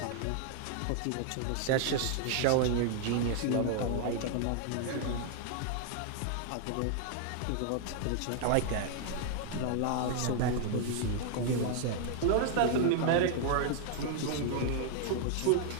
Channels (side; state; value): both; different; correlation 0.00